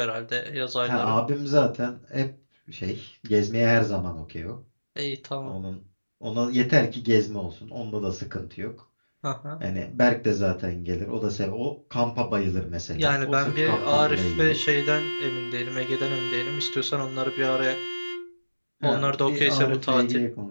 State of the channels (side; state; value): both; inverted; correlation -1.00